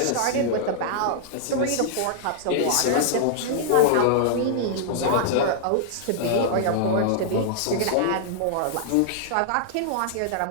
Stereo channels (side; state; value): both; different; correlation -0.01